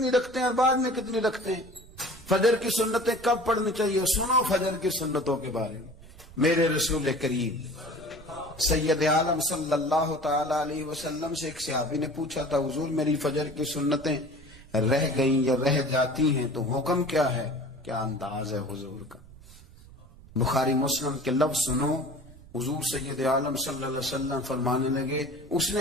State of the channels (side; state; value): right; noise; rumble, 20 dB below the sound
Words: رکھتے ہیں اور بعد میں کتنی رکھتے ہیں. فجر کی سنتیں کب پڑھنی چاہیے؟ سنو فجر کی سنتوں کے بارے میں. میرے رسول کریم سید عالم صلی اللہ تعالی علیہ وسلم سے ایک صحابی نے پوچھا تھا حضور میری فجر کی سنتیں رہ گئیں یا رہ جاتی ہیں تو حکم کیا ہے؟ کیا انداز ہے حضور کا. بخاری مسلم کے لفظ سنو. حضور سید عالم صلی اللہ علیہ وسلم فرمانے لگے. اس